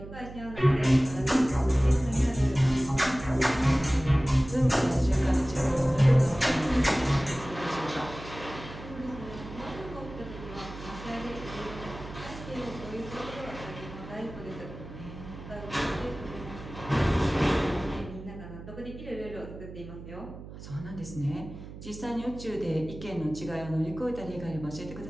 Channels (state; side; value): noise; right; hum, 13 dB below the sound